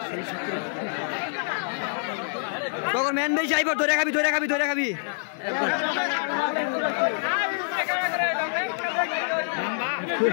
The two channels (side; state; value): right; silent; digital silence